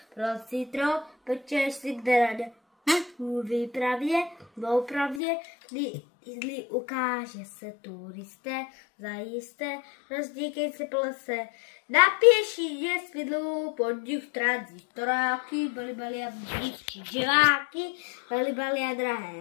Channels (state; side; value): drops out; right; at 5.2 s